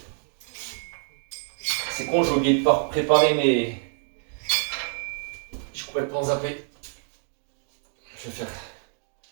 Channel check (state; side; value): silent; left; digital silence